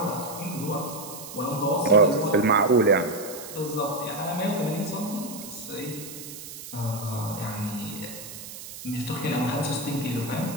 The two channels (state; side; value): noise; right; hiss, 12 dB below the sound